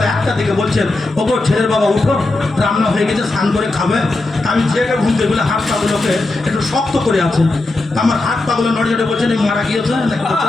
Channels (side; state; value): right; quieter; 3.0 dB